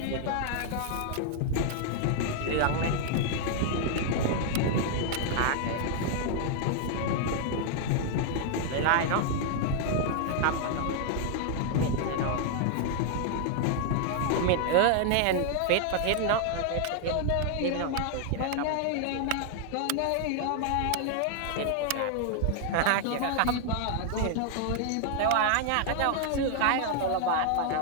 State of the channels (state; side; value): different; both; correlation 0.00